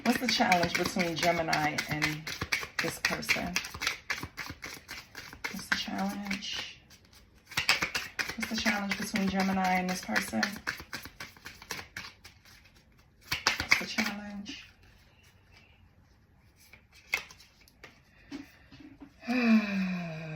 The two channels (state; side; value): identical; both; correlation 1.00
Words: What's the challenge between Gemini and this person? What's the challenge? What's the challenge between Gemini and this person? What's the challenge?